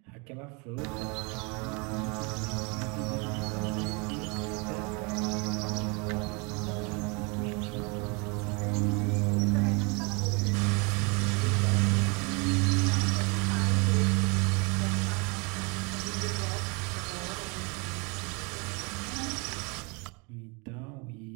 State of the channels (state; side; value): quieter; left; 30.8 dB